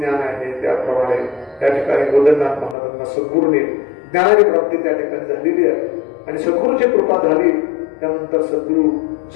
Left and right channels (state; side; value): drops out; right; at 2.8 s